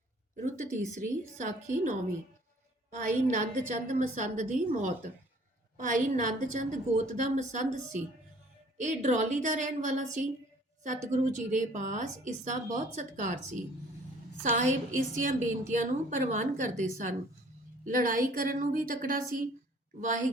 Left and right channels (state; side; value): normal; both; correlation 0.55